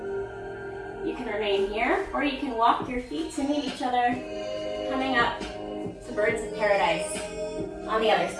You can remain here or you can walk your feet to meet each other, coming up to birds of paradise on the other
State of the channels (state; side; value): identical; both; correlation 1.00